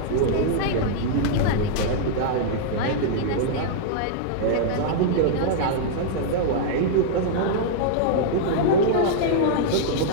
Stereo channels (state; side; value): different; both; correlation -0.01